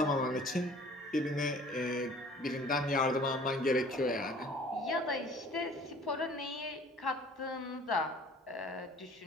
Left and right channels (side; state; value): both; normal; correlation 0.50